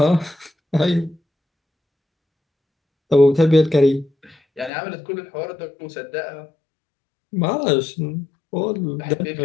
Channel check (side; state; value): right; drops out; at 4.7 s